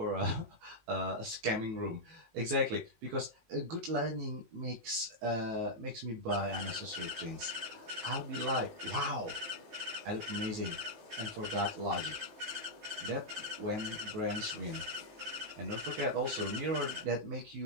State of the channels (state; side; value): late; left; 19 ms